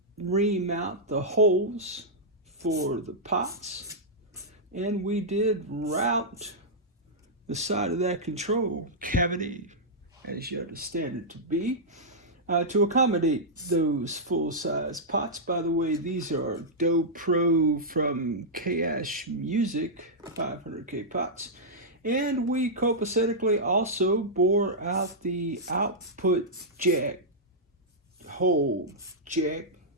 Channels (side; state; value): both; normal; correlation -0.10